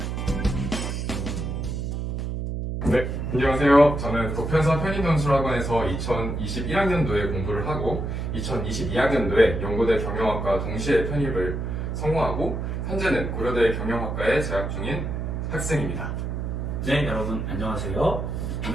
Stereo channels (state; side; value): noise; right; hum, 3 dB below the sound